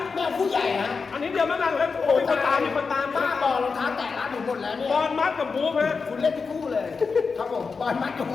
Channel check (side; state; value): right; quieter; 4.9 dB